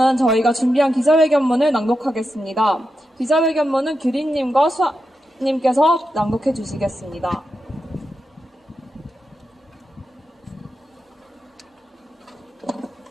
저희가 준비한 기자회견문을 낭독하겠습니다. 기자회견문은 규리님과 수아님께서 낭독해 주시겠습니다.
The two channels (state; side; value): normal; both; correlation 0.88